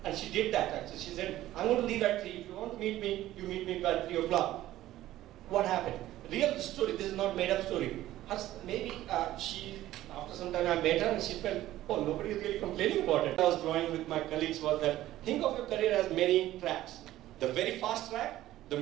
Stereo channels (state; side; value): quieter; left; 14.6 dB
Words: And she did that actually. She said, I'm going to leave at 3. If you want to meet me, you meet me by 3 o'clock. What happened? Real story, this is not made up story. Maybe after some time I met her and she felt, oh, nobody is really complaining about it. I was drawing with my colleagues was that, think of your career as many tracks. The very fast track, the